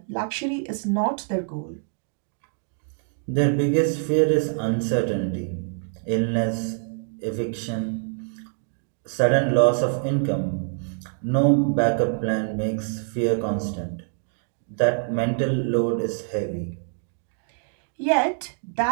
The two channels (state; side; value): silent; left; 59 dB below the other